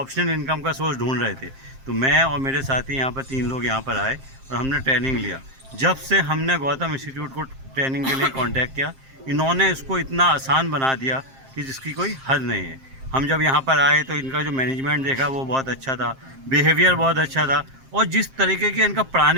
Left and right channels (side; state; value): left; late; 7.5 ms